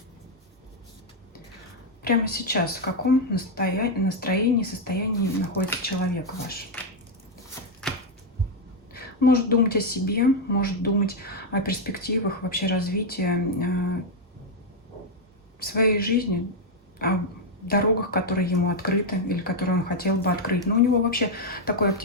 Прямо сейчас в каком настроении, состоянии находится человек ваш? Может думать о себе, может думать о перспективах, вообще развития своей жизни, о дорогах, которые ему открыты или которые он хотел бы открыть. Но у него вообще такое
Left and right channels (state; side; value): normal; both; correlation 0.01